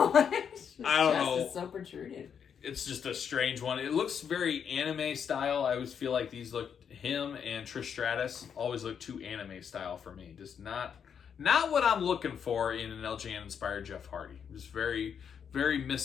my gosh. I don't know. It's so protruded. It's just a strange one. It looks very anime style. I always feel like these look, him and Trish Stratus always look too anime style for me. Just not what I'm looking for in an LJN inspired Jeff Hardy. Just very, very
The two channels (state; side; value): quieter; right; 7.5 dB